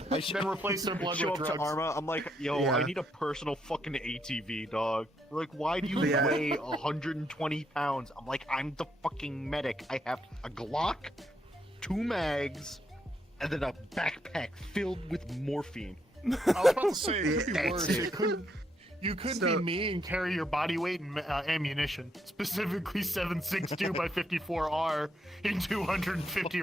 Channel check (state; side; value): normal; both; correlation 0.76